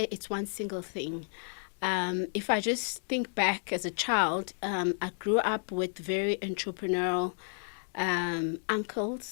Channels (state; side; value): silent; right; 57 dB below the other